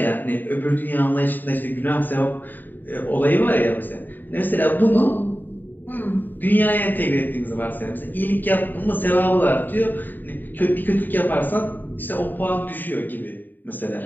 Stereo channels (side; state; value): right; late; 0.090 ms